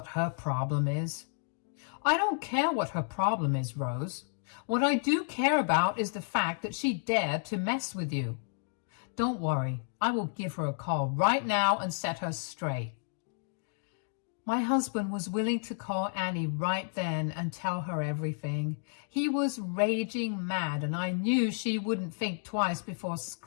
her problem is. I don't care what her problem is, Rose. What I do care about is the fact that she dared to mess with you. Don't worry, I will give her a call right now and set her straight. My husband was willing to call Annie right then and tell her everything. He was raging mad, and I knew she wouldn't think twice before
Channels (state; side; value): silent; right; digital silence